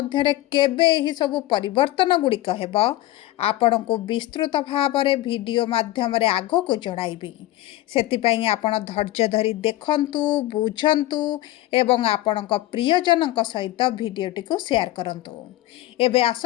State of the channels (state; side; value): quieter; right; 16.1 dB